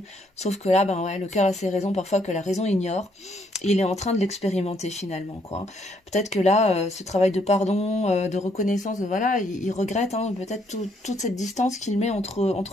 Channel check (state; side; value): normal; both; correlation 0.70